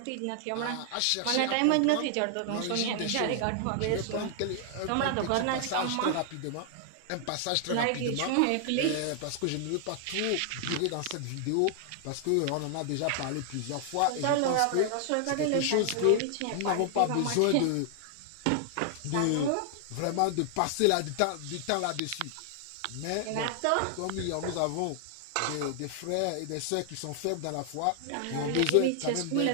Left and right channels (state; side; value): different; both; correlation 0.00